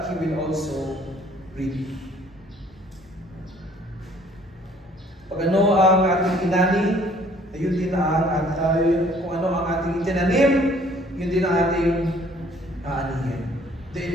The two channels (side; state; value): both; normal; correlation 0.58